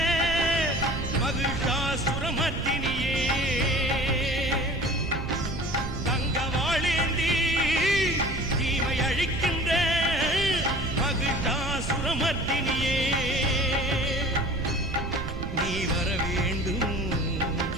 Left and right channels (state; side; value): noise; right; rumble, 5 dB below the sound